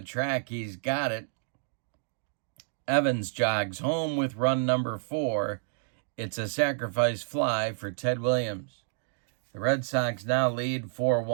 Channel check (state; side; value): silent; left; digital silence